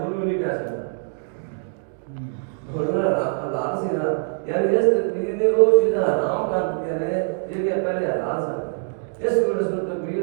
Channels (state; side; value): silent; left; 61 dB below the other